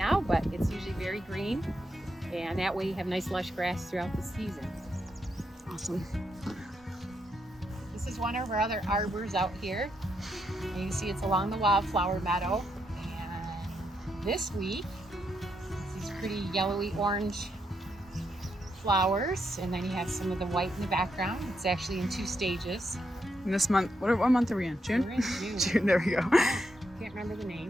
but it's usually very green. And that way you have nice lush grass throughout the season. Awesome. This is one of our other arbors out here. And you can see it's along the wildflower meadow. And this week, these pretty yellowy orange flowers, and then you have some of the white in the background. It's actually in 2 stages. And this month, what month are we in? June? We're in June. June, there we go. Can't remember the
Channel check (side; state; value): both; normal; correlation 0.80